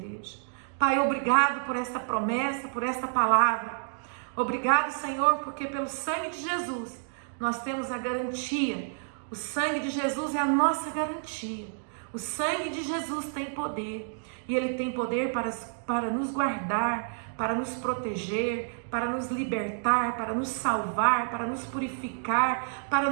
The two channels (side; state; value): left; silent; digital silence